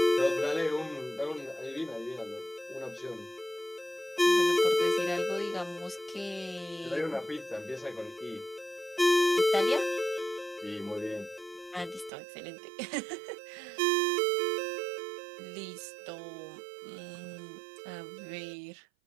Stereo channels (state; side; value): drops out; left; at 12.1 s